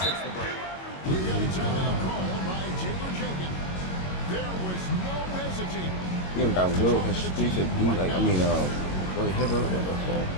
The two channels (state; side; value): late; right; 22 ms